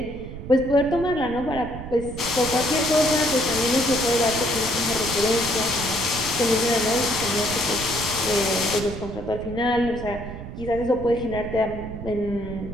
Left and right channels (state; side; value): noise; right; rumble, 10 dB below the sound